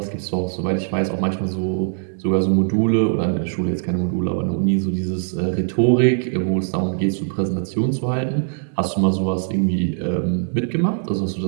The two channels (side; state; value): left; silent; 65 dB below the other